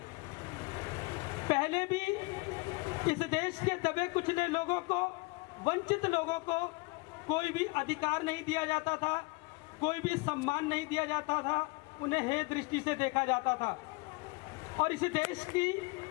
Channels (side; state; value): right; quieter; 26.3 dB